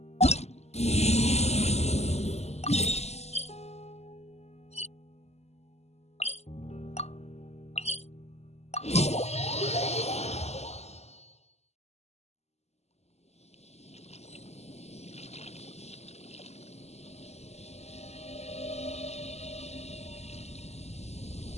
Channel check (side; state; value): right; late; 0.31 ms